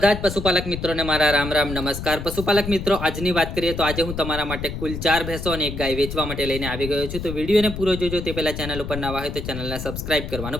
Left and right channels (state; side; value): noise; left; rumble, 7 dB below the sound